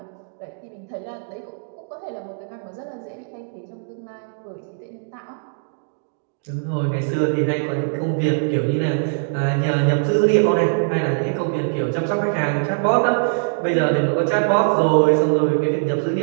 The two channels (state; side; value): silent; left; digital silence